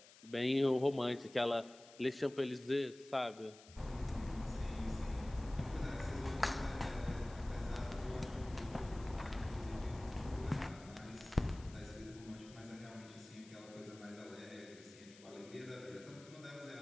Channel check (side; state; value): left; noise; hiss, 21 dB below the sound